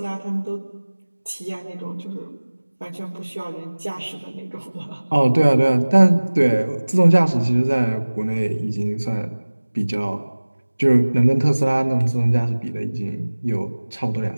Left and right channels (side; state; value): both; inverted; correlation -1.00